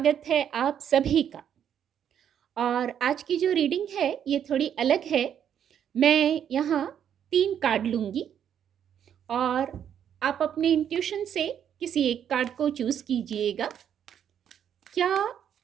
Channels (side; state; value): left; quieter; 9.1 dB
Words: है आप सभी का। और आज की जो रीडिंग है ये थोड़ी अलग है। मैं यहाँ 3 कार्ड लूँगी और आप अपने इंट्यूशन से किसी एक कार्ड को चूज़ कीजिएगा। क्या